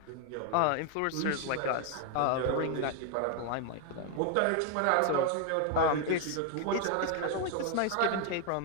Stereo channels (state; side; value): different; both; correlation 0.00